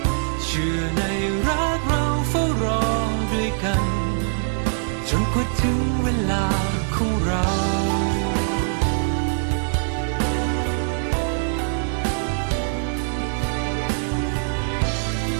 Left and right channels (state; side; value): silent; left; digital silence